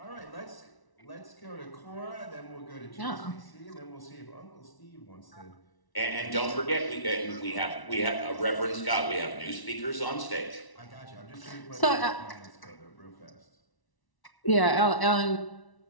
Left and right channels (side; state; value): right; late; 1.1 ms